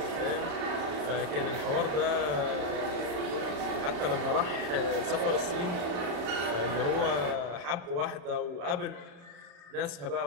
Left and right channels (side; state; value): left; late; 34 ms